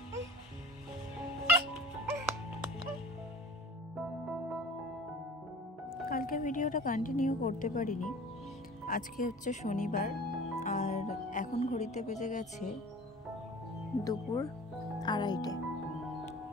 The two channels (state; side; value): normal; both; correlation 0.42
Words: কালকে ভিডিওটা কন্টিনিউ করতে পারিনি, আজকে হচ্ছে শনিবার আর এখন ঘড়িতে বেজে গেছে দুপুর 2:30।